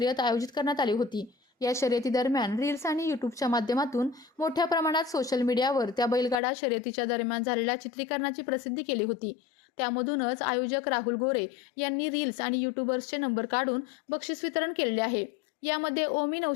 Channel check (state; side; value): drops out; right; at 6.4 s